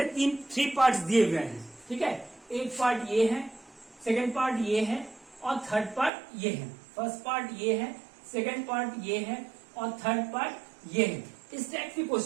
3 parts दिए हुए हैं। ठीक है, एक part ये है, सेकेंड पार्ट ये है और थर्ड पार्ट ये है। फर्स्ट पार्ट ये है, सेकेंड पार्ट ये है और थर्ड पार्ट ये है। इस टाइप के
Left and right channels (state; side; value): drops out; left; at 6.1 s